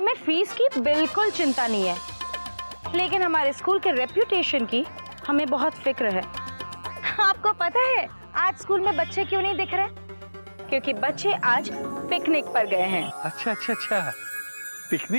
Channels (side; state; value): both; inverted; correlation -1.00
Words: फीस की बिल्कुल चिंता नहीं है, लेकिन हमारे स्कूल के रेप्यूटेशन की हमें बहुत फिक्र है। आपको पता है आज स्कूल में बच्चे क्यों नहीं दिख रहे? क्योंकि बच्चे आज पिकनिक पर गए हैं। अच्छा अच्छा अच्छा,